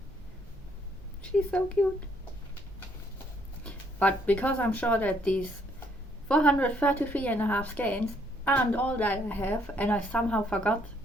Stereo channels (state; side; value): normal; both; correlation 0.68